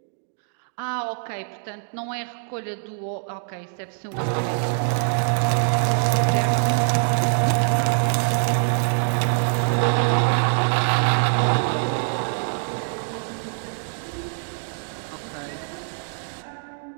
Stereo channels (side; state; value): left; silent; 63 dB below the other